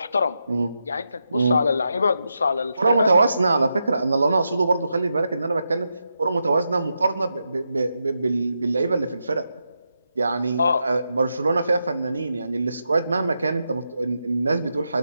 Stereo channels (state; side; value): inverted; both; correlation -0.86